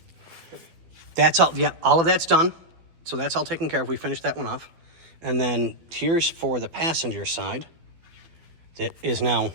That's all, yeah, all of that's done. So that's all taken care of. We finished that one off. And then here's for the passenger side. That is now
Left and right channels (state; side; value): late; left; 12 ms